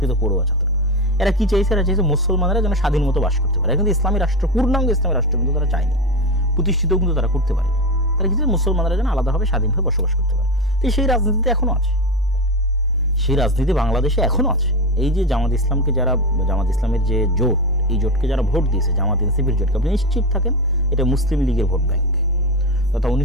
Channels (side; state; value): both; normal; correlation 0.18